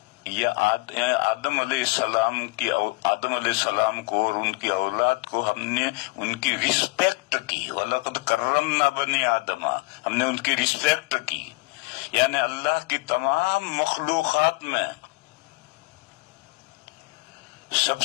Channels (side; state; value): right; quieter; 26.4 dB